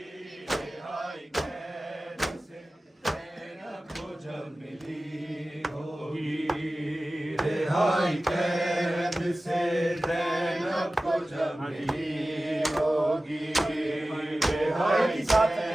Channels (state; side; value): normal; both; correlation 0.96